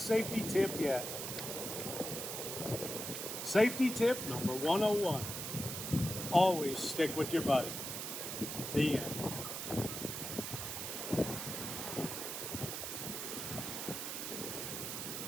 safety tip yet. Safety tip number 101. Always stick with your buddy. The end.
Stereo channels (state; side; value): noise; right; hiss, 5 dB below the sound